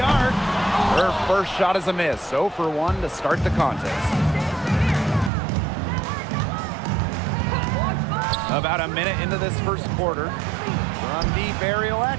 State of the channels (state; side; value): drops out; left; at 5.3 s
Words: arc. Her first shot is a miss. 0 for 1 to start the contest. About a minute into this first quarter. From deep, Ariel